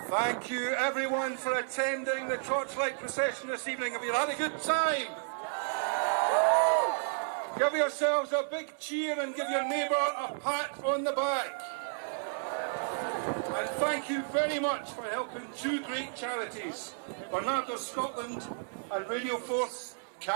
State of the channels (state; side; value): silent; left; 56 dB below the other